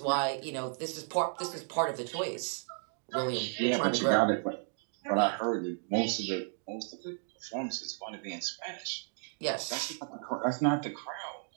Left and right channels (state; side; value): silent; left; 55 dB below the other